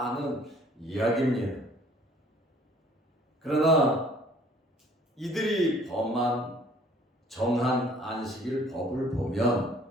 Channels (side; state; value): both; normal; correlation 0.56